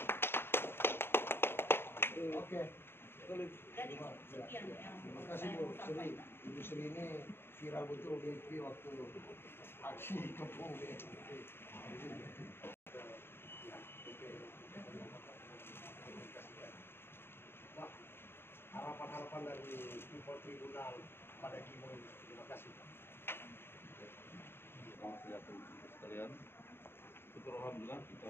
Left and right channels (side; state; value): right; late; 0.11 ms